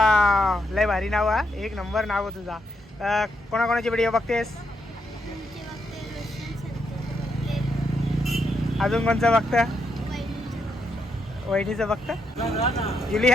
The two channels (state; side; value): normal; both; correlation 0.79